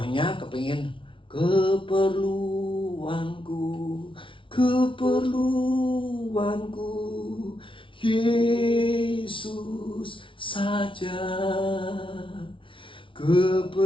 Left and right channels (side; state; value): right; late; 0.25 ms